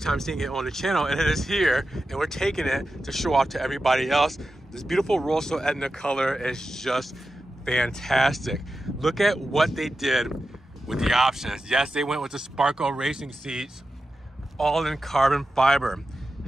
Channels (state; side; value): normal; both; correlation 0.92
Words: time seeing it on the channel, and it is here, and we're taking it to show off to everybody else. This beautiful Rosso Etna color is just fantastic. Look at what they did with the options. Yes, they went with the Sparco racing seats, all in carbon fiber.